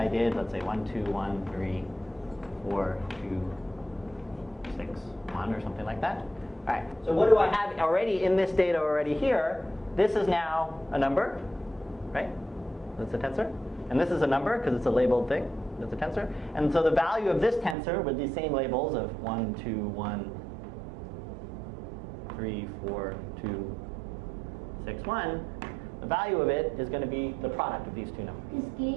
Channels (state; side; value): drops out; left; at 17.8 s